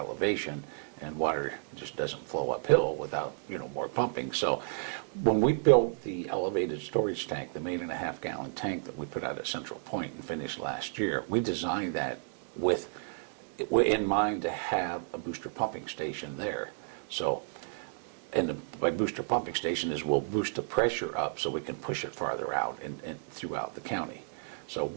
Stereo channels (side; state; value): left; silent; digital silence